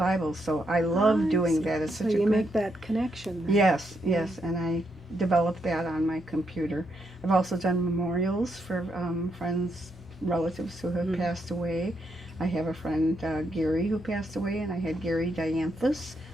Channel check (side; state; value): both; normal; correlation 0.79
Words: So I love doing that. It's so such a you good, make that connection then. Yes, and I developed that on my computer. I've also done memorials for friends, relatives who have passed away. I have a friend, Gary, who passed away, and I had Gary dianthus